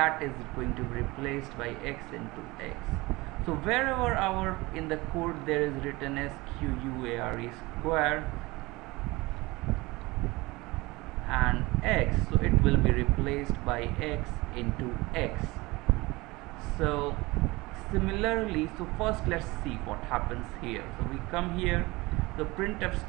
is going to be replaced by x into x. So wherever in the code there is written square square and x, so it will be replaced by x into x. So similarly, so first let's see what happens here. So we come here, the printf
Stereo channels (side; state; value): left; quieter; 22.2 dB